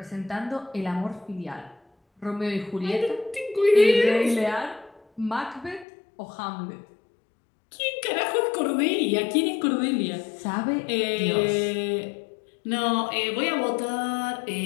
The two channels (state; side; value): drops out; right; at 5.9 s